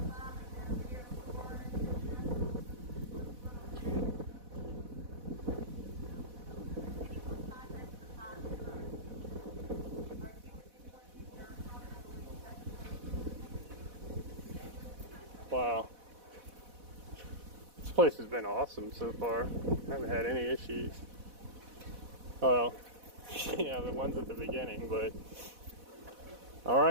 Wow. This place has been awesome so far. I haven't had any issues. Well, yeah, the ones at the beginning, but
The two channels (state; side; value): late; left; 4.1 ms